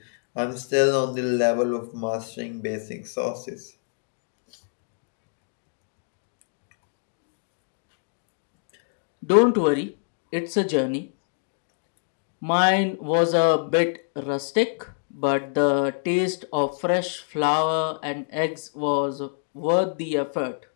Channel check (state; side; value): silent; right; digital silence